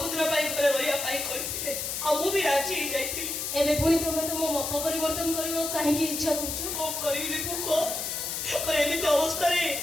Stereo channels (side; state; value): left; noise; hiss, 3 dB below the sound